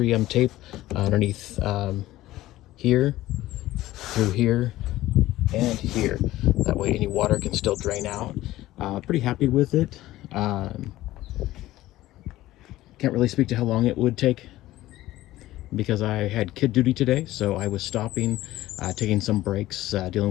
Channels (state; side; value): quieter; right; 15.9 dB